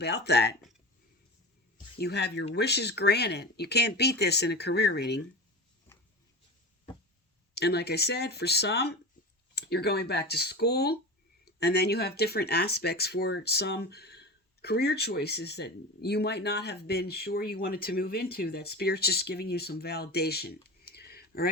that. You have your wishes granted. You can't beat this in a career reading. And like I said, for some, you're going back to school. And then you have different aspects for some career choices that you might not have been sure you wanted to move into. That Spirit's just giving you some validation. All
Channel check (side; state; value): both; normal; correlation 0.28